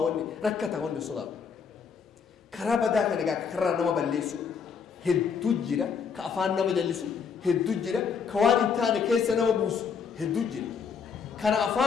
wanni rakkata wanni sodaatu karaa badaa kan egaa karaa nama balleessu hedduu jira ka afaan nama jallisu hedduu jira ka waan hin taane keessa nama buusu hedduu jira kana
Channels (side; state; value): right; quieter; 6.2 dB